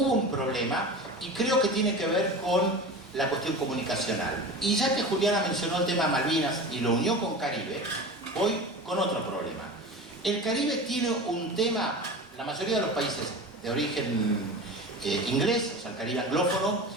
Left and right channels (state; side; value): normal; both; correlation 0.32